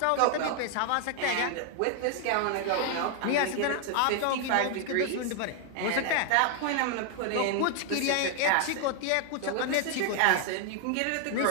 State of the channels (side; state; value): both; different; correlation 0.00